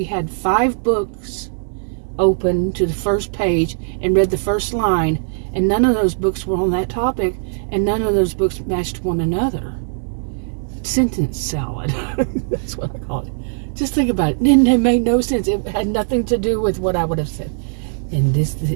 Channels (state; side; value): silent; left; digital silence